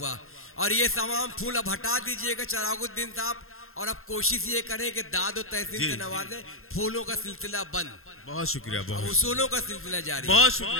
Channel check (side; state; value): right; late; 0.61 ms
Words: और ये तमाम फूल अब हटा दीजिएगा चरागुद्दीन साहब, और अब कोशिश ये करें कि दाद और तहसीन से नवाजें। फूलों का सिलसिला बंद। बहुत शुक्रिया, बहुत उसूलों का सिलसिला जारी। बहुत